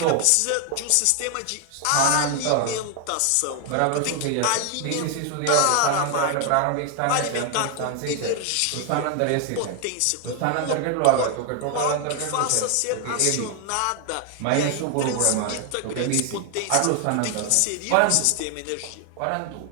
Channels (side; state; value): both; different; correlation 0.00